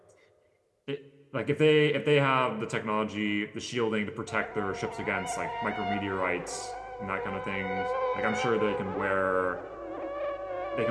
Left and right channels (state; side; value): identical; both; correlation 1.00